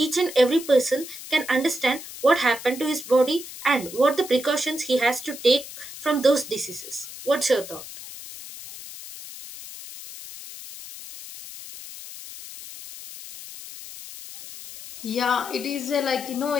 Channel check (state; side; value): noise; left; hiss, 13 dB below the sound